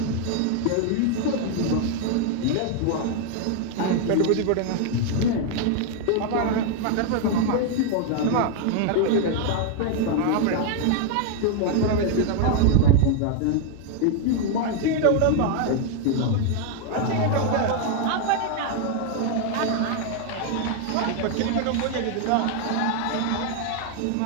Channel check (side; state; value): both; different; correlation 0.00